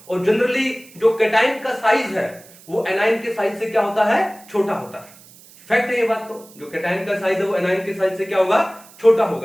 और जनरली जो कैटायन का साइज है वो एनायन के साइज से क्या होता है, छोटा होता है। फैक्ट है ये बात। तो जो कैटायन का साइज है वो एनायन के साइज से क्या होगा, छोटा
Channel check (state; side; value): noise; right; hiss, 23 dB below the sound